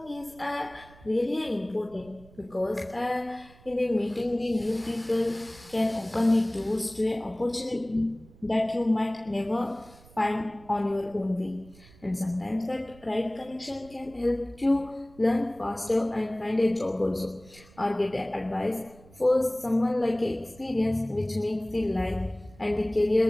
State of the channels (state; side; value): noise; right; rumble, 24 dB below the sound